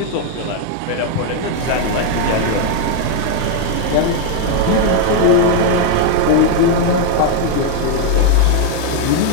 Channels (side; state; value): both; different; correlation 0.01